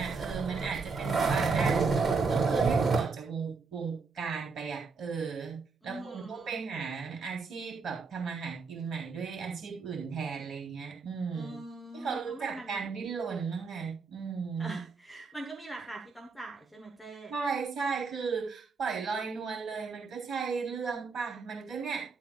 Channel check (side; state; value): left; quieter; 4.7 dB